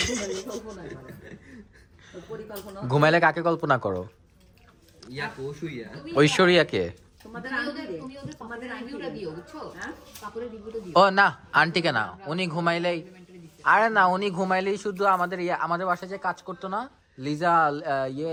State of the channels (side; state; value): both; identical; correlation 1.00